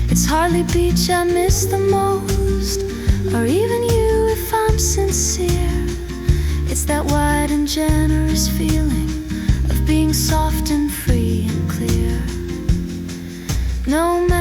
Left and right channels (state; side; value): identical; both; correlation 1.00